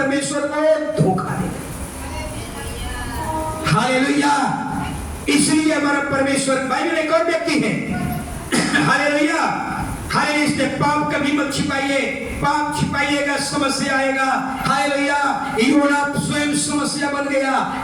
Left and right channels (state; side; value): identical; both; correlation 1.00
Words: को धोखा दे। हालेलुया। इसलिए हमारा परमेश्वर, बाइबल में एक और व्यक्ति है, हालेलुया, हालेलुया, इसलिए पाप कभी मत छिपाइए, पाप छिपाइएगा समस्या आएगा। हालेलुया। योना स्वयं समस्या बन गया।